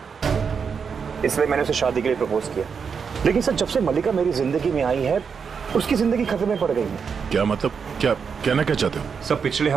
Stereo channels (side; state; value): left; quieter; 6.2 dB